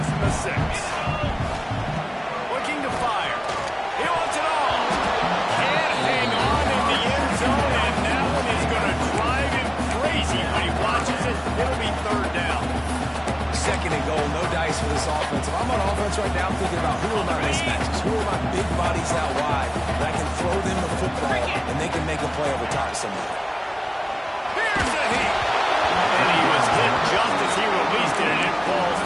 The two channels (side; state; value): both; identical; correlation 1.00